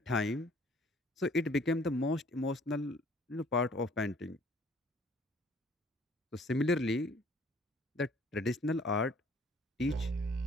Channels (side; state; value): both; normal; correlation 0.57